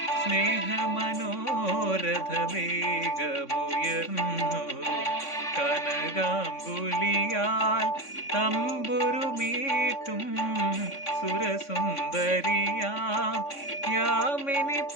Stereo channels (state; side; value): late; right; 3.5 ms